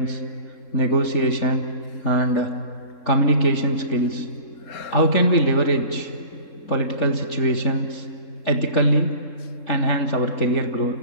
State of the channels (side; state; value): right; late; 3.7 ms